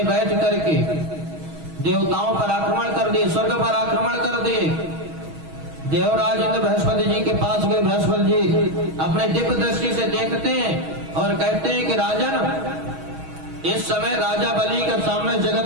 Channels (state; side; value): late; left; 6.3 ms